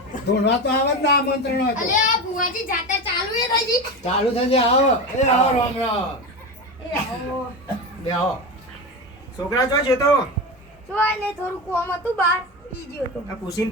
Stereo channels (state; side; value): normal; both; correlation 0.22